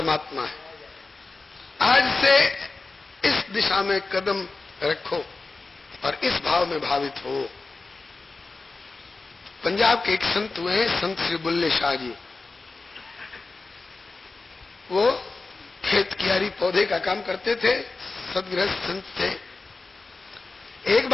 है। आज से इस दिशा में कदम रखो और इस भाव में भावित हो। पंजाब के एक संत हुए हैं, संत श्री बुल्ले शाह जी। वो खेत कियारी पौधे का काम करते थे, सदगृहस्थ संत थे। एक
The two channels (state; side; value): quieter; right; 3.7 dB